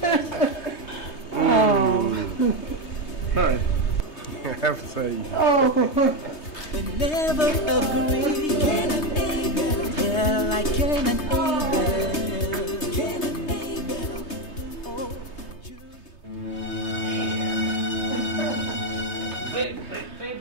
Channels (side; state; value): right; late; 3.2 ms